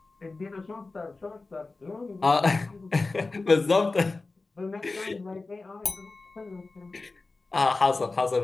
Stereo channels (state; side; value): quieter; right; 3.6 dB